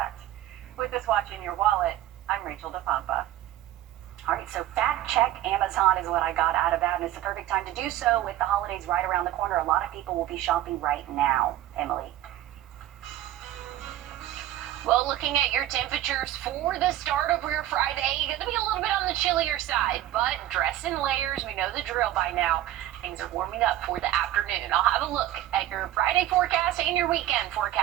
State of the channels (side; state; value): left; quieter; 13.6 dB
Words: With this Watch in Your Wallet, I'm Rachel DePompa. All right, so fact check Amazon is what I got out of that, and it's the perfect time to do so with the holidays right around the corner. A lot of people will be shopping right now. Emily? Well, looking at your temperatures for the start of your Friday, going to be a little bit on the chillier side, but dress in layers. We know the drill by now. Things are warming up for the afternoon. I'll have a look